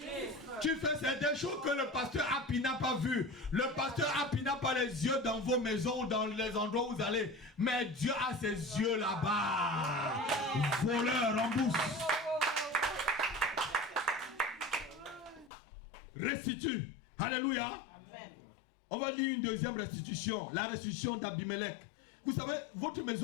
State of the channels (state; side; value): drops out; right; at 15.5 s